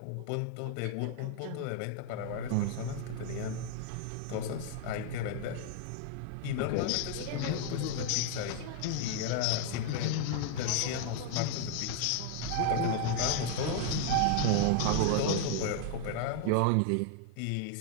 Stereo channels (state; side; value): different; both; correlation 0.00